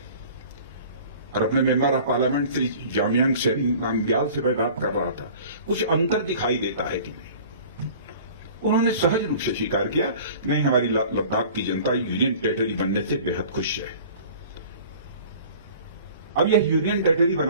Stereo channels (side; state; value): both; inverted; correlation -0.45